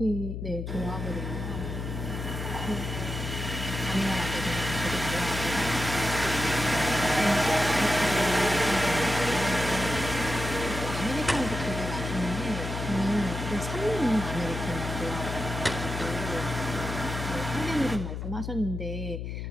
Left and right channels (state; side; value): noise; left; hum, 5 dB below the sound